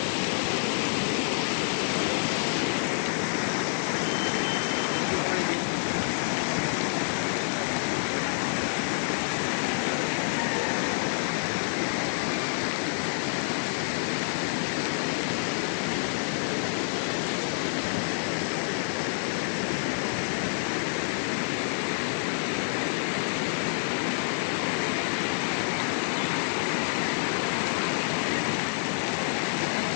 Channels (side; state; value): right; silent; 59 dB below the other